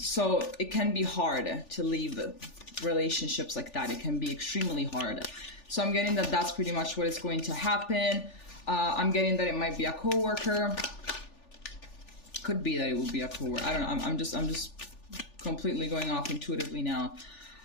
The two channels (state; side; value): late; right; 3.4 ms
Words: it can be hard to leave relationships like that. It can be extremely hard. So I'm getting that that's pretty much what is going to happen. I'm getting that it might be a coworker. Could be that it will be a coworker. I don't know. I'm just completely going off intuitively now.